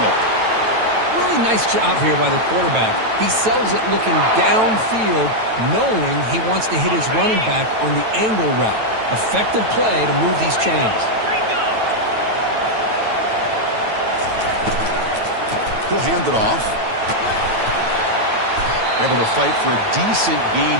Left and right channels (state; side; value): late; left; 9.1 ms